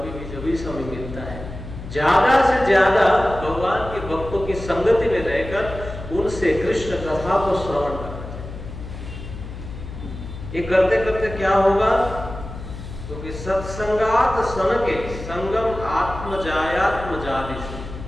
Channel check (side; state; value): left; noise; hum, 11 dB below the sound